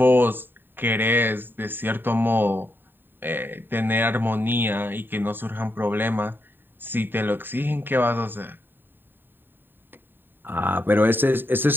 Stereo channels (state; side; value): late; left; 0.095 ms